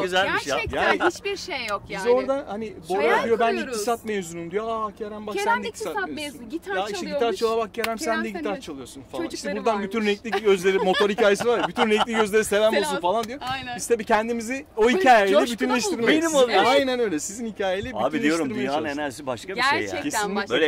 güzelmiş ya. Gerçekten Yani- hiçbir şey yok yani. biz orada hani Bora Hayal diyor ben kuruyoruz. iktisat mezunuyum diyor. Kerem bak Kerem sen de de iktisat iktisat mezunu, mezunu. gitar Ya işte çalıyormuş. gitar çala bak Kerem sen Kerem de sen gitar de- çalıyorsun falan. İşte çocukları buradan varmış. bütün renkli gözleri motor hikayesi var ya. Bütün renkli gözlere selam olsun Selam. falan diyor. Aynen. Biz tabii kendimizi o hikayeyle coşkuna bütünleştirmeyi. bulduk. Benim oluyor. Aynen öyle. Sizin hikayeyle Abi diyorum bütünleştirmeye dünyanın çalıştık. enerjisi başka bir şey ya. Gerçekten Kesinlikle başka.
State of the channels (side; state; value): both; identical; correlation 1.00